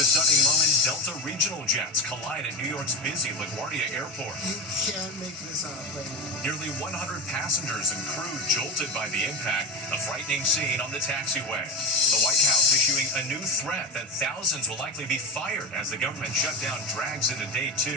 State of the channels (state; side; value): normal; both; correlation 0.20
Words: stunning moment, Delta regional jets collide at New York's busy LaGuardia Airport. You can't make this up, baby. Nearly 100 passengers and crew jolted by the impact, a frightening scene on the taxiway. The White House issuing a new threat that thousands will likely be fired as the government shutdown drags into day